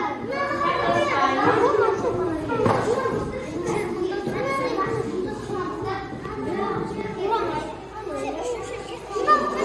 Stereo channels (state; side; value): identical; both; correlation 1.00